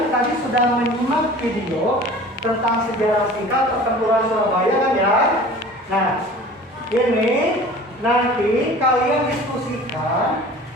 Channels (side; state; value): both; normal; correlation 0.43